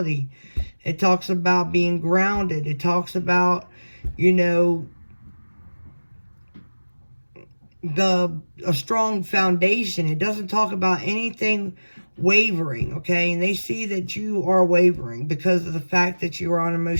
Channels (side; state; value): both; inverted; correlation -1.00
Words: It talks about being grounded. It talks about, you know, a strong foundation. It doesn't talk about anything wavering, okay? And they see that you are wavering because of the fact that you are